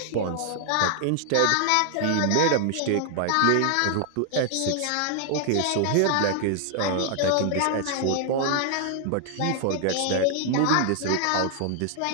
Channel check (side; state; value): both; different; correlation 0.00